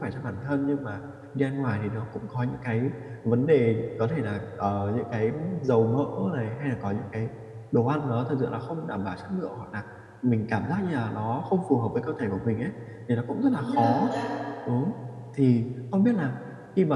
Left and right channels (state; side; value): identical; both; correlation 1.00